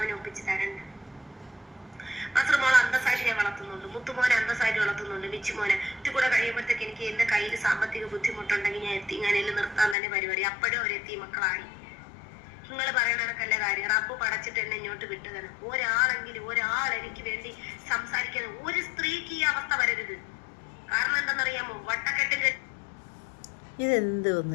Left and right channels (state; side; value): drops out; right; at 10.0 s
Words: ഒപ്പിച്ച് തരണ്ട. മസറുമോളെ അന്തസ്സായിട്ട് ഞാൻ വളർത്തുന്നുണ്ട്, മുത്തുമോനെ അന്തസ്സായിട്ട് വളർത്തുന്നുണ്ട്, മിച്ചുമോനെ. ഇത് കൂടെ കഴിയുമ്പോഴത്തേക്ക് എനിക്ക് എന്റെ കയ്യിൽ സാമ്പത്തിക ബുദ്ധിമുട്ടുണ്ടെങ്കിൽ ഞാൻ എത്തിങ്ങാനയിൽ നിർത്താൻ തന്നെ പരിപാടി. അപ്പോഴും അവരെത്തി മക്കളായി. നിങ്ങൾ പറയണക്കല്ല കാര്യം. റബ്ബ് പടച്ചിട്ട് എന്നെ ഇങ്ങോട്ട് വിട്ടതാണ്. ഒരാൾ എനിക്ക് വേണ്ടി സംസാരിക്കാൻ ഒരു സ്ത്രീക്ക് ഈ അവസ്ഥ വരരുത്. കാരണം എന്താണെന്നറിയാമോ? വട്ടക്കെട്ടിൽ ഇതെന്ത്